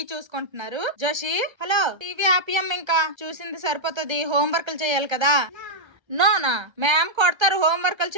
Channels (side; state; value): left; late; 1.3 ms